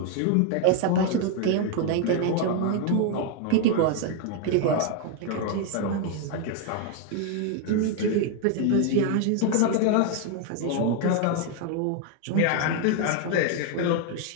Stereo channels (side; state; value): both; different; correlation 0.01